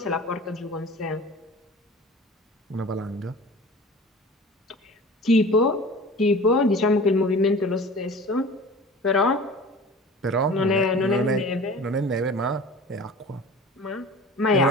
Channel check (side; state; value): both; normal; correlation 0.40